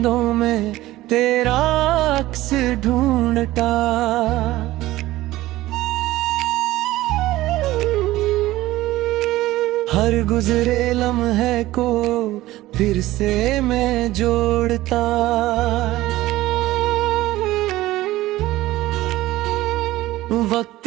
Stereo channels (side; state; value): left; quieter; 16.7 dB